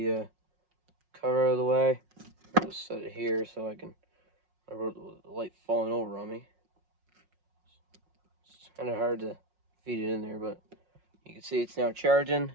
cover out of the way. I'll just set it here so I can, the light falling over on me. It's kind of hard to feed it in there, but you can see it's now charging.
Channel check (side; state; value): left; late; 5.5 ms